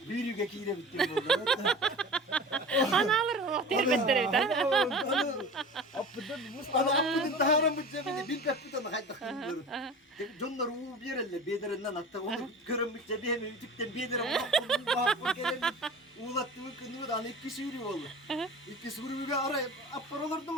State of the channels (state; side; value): normal; both; correlation 0.36